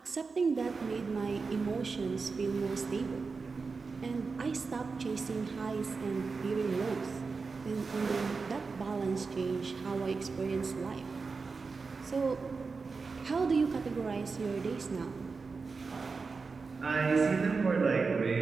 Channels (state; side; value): quieter; left; 4.6 dB